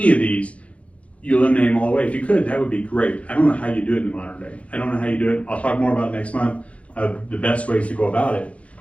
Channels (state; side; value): late; right; 0.064 ms